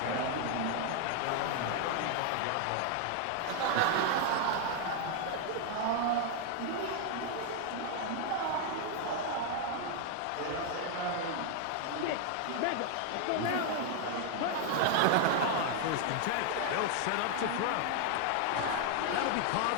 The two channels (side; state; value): both; different; correlation 0.00